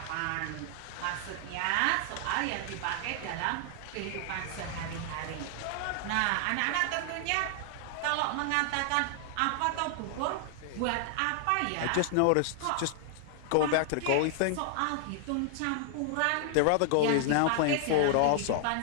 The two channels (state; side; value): different; both; correlation 0.00